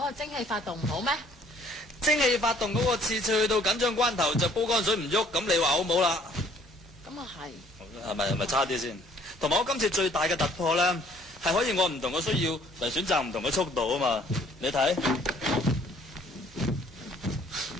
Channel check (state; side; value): normal; both; correlation 0.59